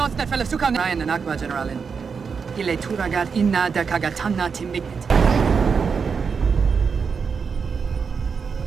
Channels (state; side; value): quieter; left; 5.8 dB